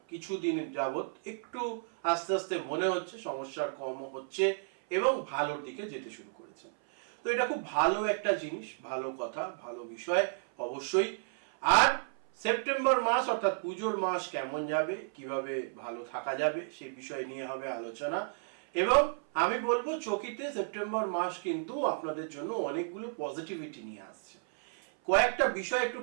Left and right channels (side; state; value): left; silent; 56 dB below the other